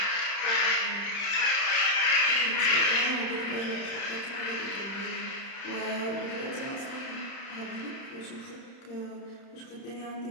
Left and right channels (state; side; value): late; right; 30 ms